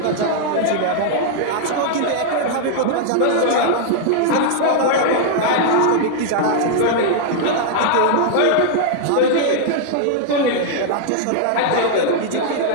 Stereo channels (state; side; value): different; both; correlation -0.01